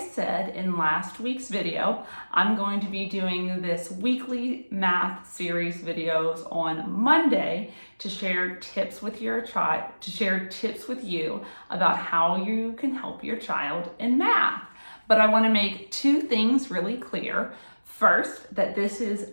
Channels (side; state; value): both; inverted; correlation -1.00